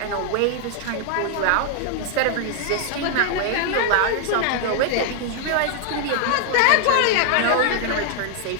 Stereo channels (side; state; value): both; different; correlation 0.00